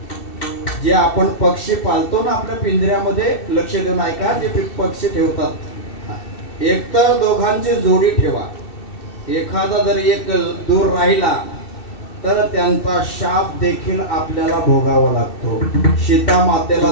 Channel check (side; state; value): right; late; 2.7 ms